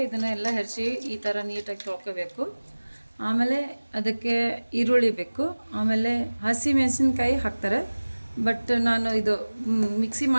ಇದನ್ನೆಲ್ಲ ಹೆರ್ಚಿ ಈ ಥರ ನೀಟಾಗಿ ತೊಳ್ಕೋಬೇಕು. ಆಮೇಲೆ ಅದಕ್ಕೆ ಈರುಳ್ಳಿ ಬೇಕು. ಆಮೇಲೆ ಹಸಿ ಮೆಣಸಿನ್ಕಾಯಿ ಹಾಕ್ತಾರೆ, ಬಟ್ ನಾನು ಇದು ಮಿಕ್ಸಿ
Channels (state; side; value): inverted; both; correlation -1.00